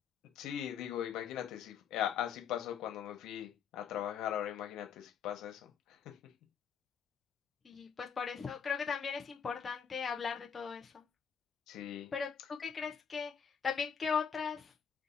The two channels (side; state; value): right; quieter; 7.2 dB